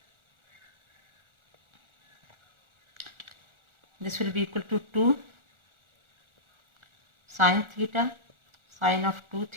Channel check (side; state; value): left; late; 1.4 ms